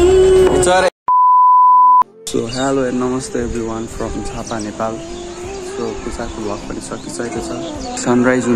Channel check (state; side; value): identical; both; correlation 1.00